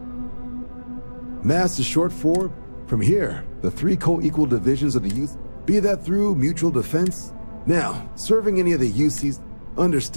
Mass is short for, from here, the 3 co-equal divisions of the youth, be that through mutual defense. Now, serving any of the UCs,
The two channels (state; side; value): inverted; both; correlation -1.00